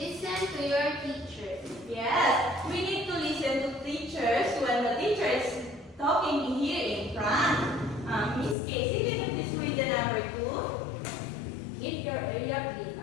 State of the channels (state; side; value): drops out; right; at 8.6 s